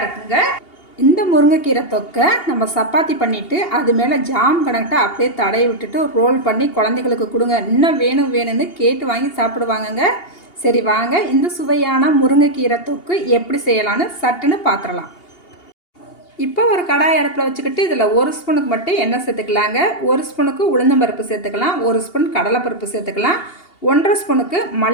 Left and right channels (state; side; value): late; right; 2.8 ms